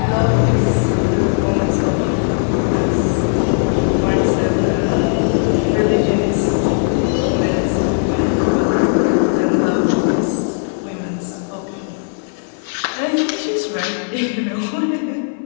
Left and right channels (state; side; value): silent; right; 56 dB below the other